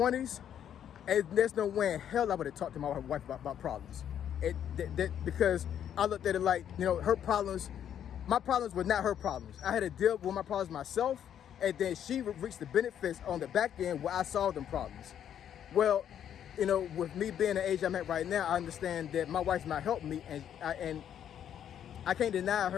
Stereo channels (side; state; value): right; quieter; 9.6 dB